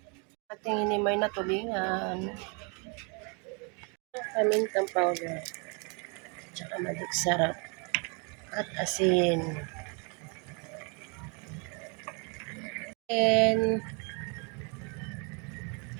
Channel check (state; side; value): quieter; left; 34.3 dB